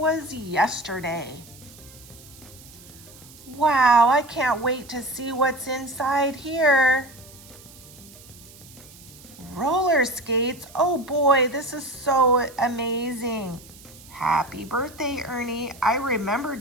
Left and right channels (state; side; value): noise; right; hiss, 21 dB below the sound